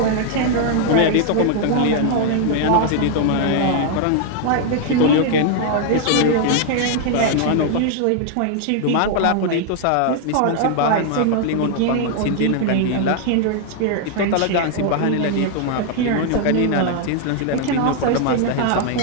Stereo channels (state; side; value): different; both; correlation 0.00